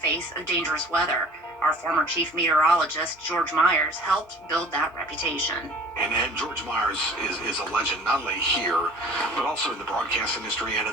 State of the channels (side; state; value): both; normal; correlation 0.47